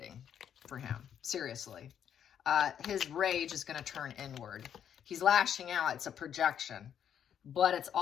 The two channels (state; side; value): quieter; right; 9.0 dB